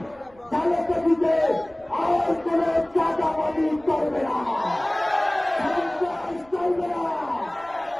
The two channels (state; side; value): noise; right; rumble, 28 dB below the sound